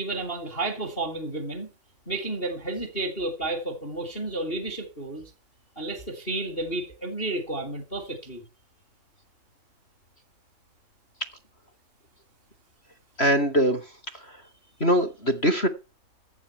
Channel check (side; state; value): right; late; 3.0 ms